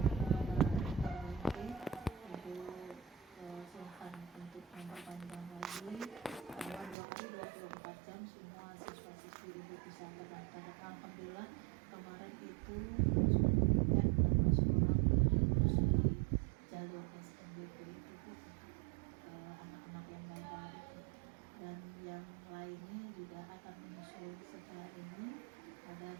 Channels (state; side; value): drops out; left; at 7.0 s